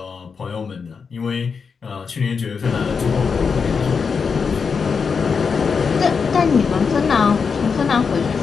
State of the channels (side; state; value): right; quieter; 5.6 dB